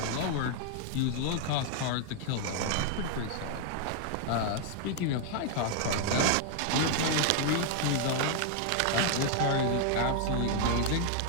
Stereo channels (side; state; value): both; different; correlation 0.00